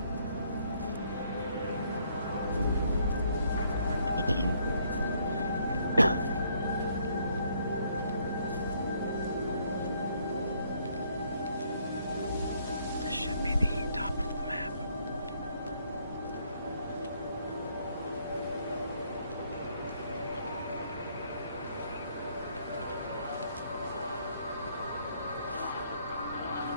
This should be the top of the map.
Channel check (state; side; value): inverted; both; correlation -0.68